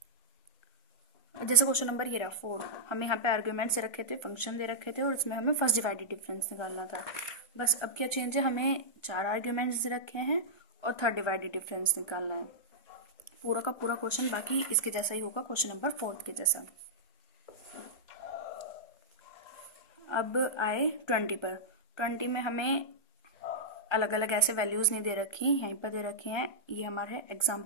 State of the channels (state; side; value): late; right; 1.3 ms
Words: जैसे क्वेश्चन नंबर ये रहा 4, हमें यहाँ पे आर्ग्यूमेंट्स दे रखे थे, फंक्शन दे रखे थे, और इसमें हमें फर्स्ट डिवाइडेड डिफरेंस निकालना था। बस अब क्या चेंज है, हमें 4 आर्ग्यूमेंट्स दे रखे हैं और थर्ड डिवाइडेड डिफरेंस निकालना है। पूरा का पूरा क्वेश्चन बाकी इसके जैसा ही होगा, क्वेश्चन नंबर 4 के जैसा। अब आए 20 पर। 20 में हमें अलग अलग ऐसे वैल्यूज़ नहीं दे रखी, यहीं पर दे रखे हैं। ये हमारे